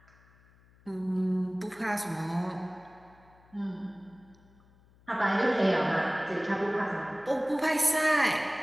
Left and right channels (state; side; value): noise; left; hum, 29 dB below the sound